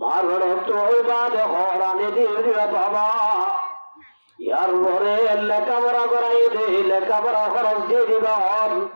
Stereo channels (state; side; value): inverted; both; correlation -1.00